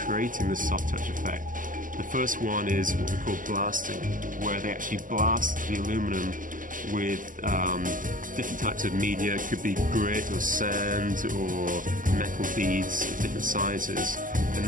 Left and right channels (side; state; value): left; late; 0.38 ms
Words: this soft touch effect. The first one is what we call blasting, where they actually blast the aluminum with different types of media. It could be grit or sand or metal beads of different sizes, and